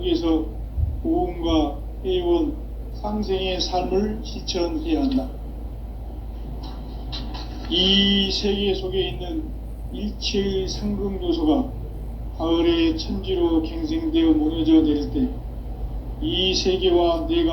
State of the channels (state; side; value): identical; both; correlation 1.00